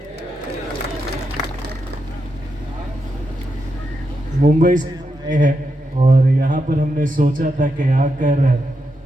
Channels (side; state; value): both; normal; correlation 0.84